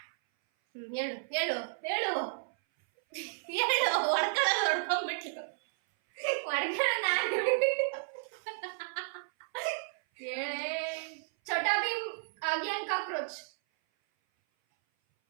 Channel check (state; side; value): silent; left; 56 dB below the other